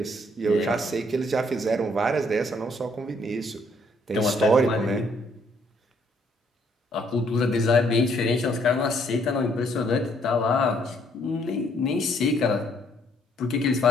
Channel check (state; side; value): normal; both; correlation 0.67